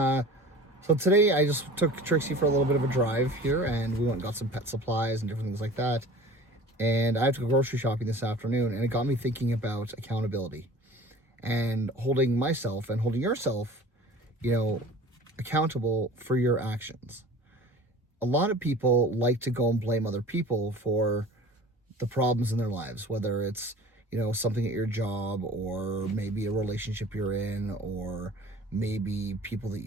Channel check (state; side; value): normal; both; correlation 0.42